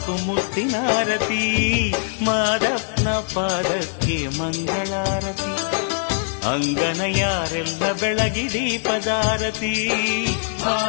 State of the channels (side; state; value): right; silent; digital silence